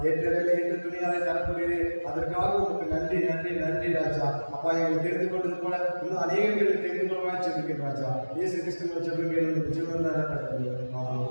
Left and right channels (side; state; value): both; inverted; correlation -1.00